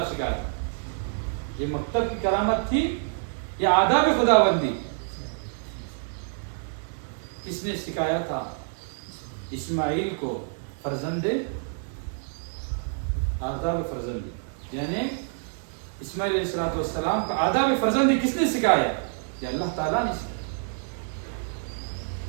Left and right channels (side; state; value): left; silent; digital silence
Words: سکھایا تھا۔ یہ مکتب کی کرامت تھی یا آداب خداوندی؟ کس نے سکھایا تھا؟ اسماعیل کو فرزند آداب فرزندی، یعنی اسماعیل علیہ السلام کا آداب فرزندی کس نے سکھایا؟ یہ اللہ تعالیٰ نے سکھایا،